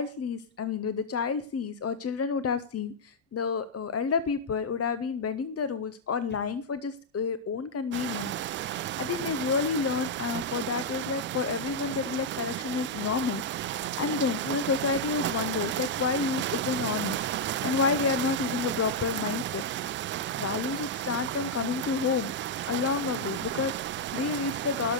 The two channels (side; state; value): both; normal; correlation -0.04